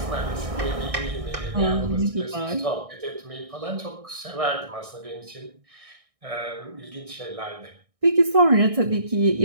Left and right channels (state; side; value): late; left; 1.6 ms